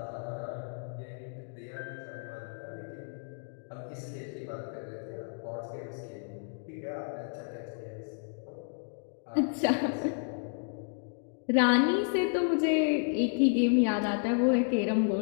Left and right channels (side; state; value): right; silent; 57 dB below the other